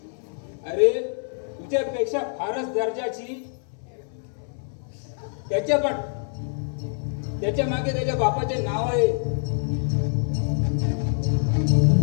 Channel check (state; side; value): silent; right; 61 dB below the other